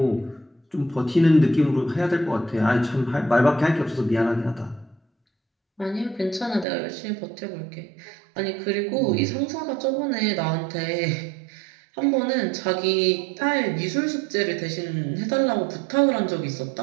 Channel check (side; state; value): left; drops out; at 6.7 s